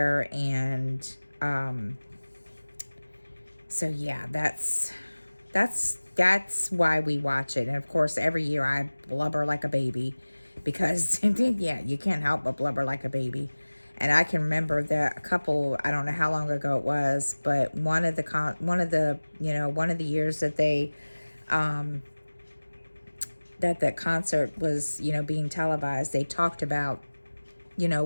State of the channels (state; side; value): inverted; both; correlation -1.00